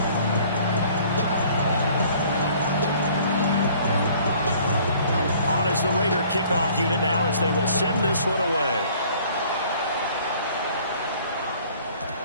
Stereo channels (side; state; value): both; inverted; correlation -0.55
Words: the Raider kickoff unit now as they will send this one away.